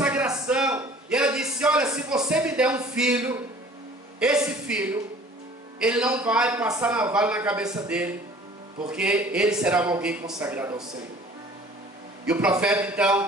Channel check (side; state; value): both; normal; correlation 0.49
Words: E ela disse: olha, se você me der um filho, esse filho, ele não vai passar navalha na cabeça dele, porque ele será alguém consagrado ao Senhor. E o profeta